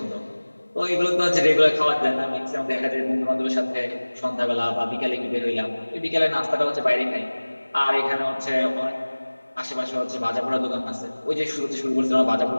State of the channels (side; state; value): both; inverted; correlation -1.00